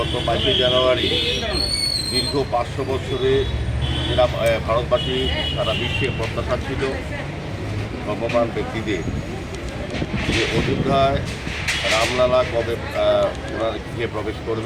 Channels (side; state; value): both; identical; correlation 1.00